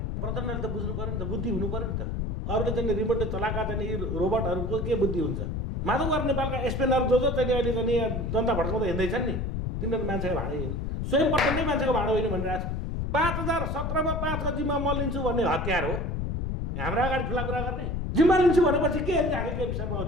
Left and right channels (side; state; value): left; noise; rumble, 2 dB below the sound